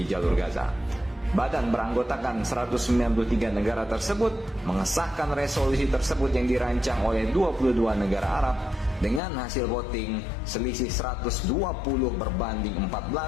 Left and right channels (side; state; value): right; drops out; at 9.2 s